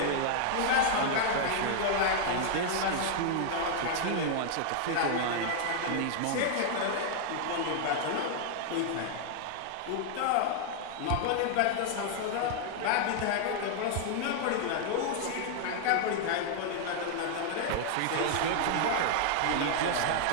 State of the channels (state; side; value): different; both; correlation 0.00